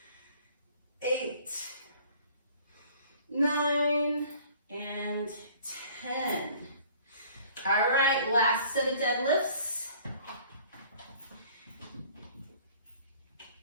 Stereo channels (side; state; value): both; inverted; correlation -0.52